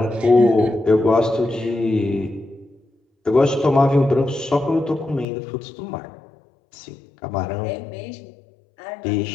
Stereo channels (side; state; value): right; drops out; at 5.2 s